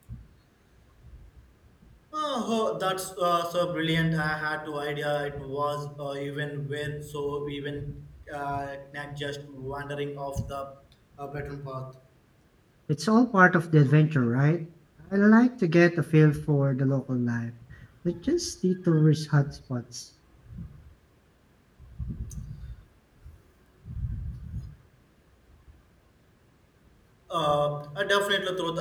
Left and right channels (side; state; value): both; identical; correlation 1.00